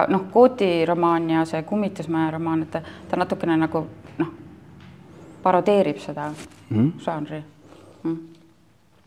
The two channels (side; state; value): both; identical; correlation 1.00